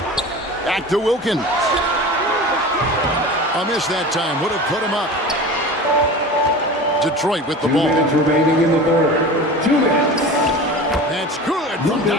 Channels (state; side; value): normal; both; correlation 0.34